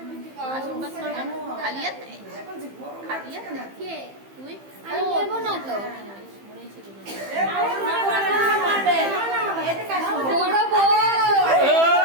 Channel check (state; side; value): late; left; 15 ms